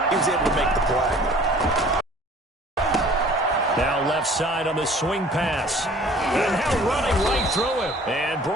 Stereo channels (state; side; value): normal; both; correlation 0.50